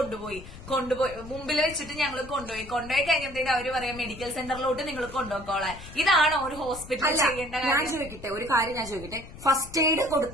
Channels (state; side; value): noise; left; rumble, 15 dB below the sound